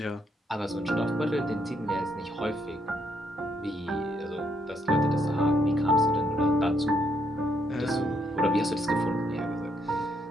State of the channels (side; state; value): both; normal; correlation 0.74